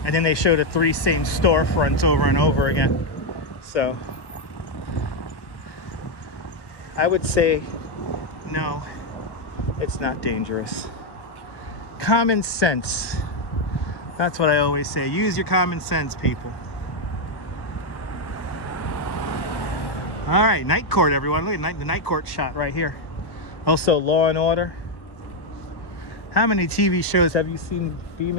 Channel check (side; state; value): right; late; 1.1 ms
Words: And then they showed the 3 same storefronts over and over again. So I would say, no, it's not dangerous. Common sense. That's what I always say. Use your common sense, people. All right, night court, everyone. Look at the night court shot right here. Also, Law and Order. How many TV shows have you seen be